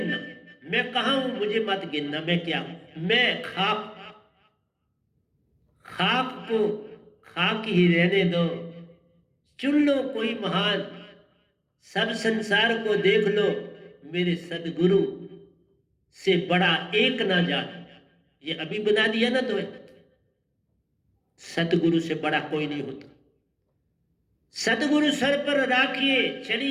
मैं कहाँ हूं मुझे मत गिनना, मैं क्या हूं, मैं खाक, खाक को खाक ही रहने दो, चुन लो कोई महान, सब संसार को देख लो, मेरे सदगुरु से बड़ा एक ना जान। ये अभी बना दिया ना तो, सतगुरु से बड़ा कोई नहीं होता। सतगुरु सर पर राखिए,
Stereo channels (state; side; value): identical; both; correlation 1.00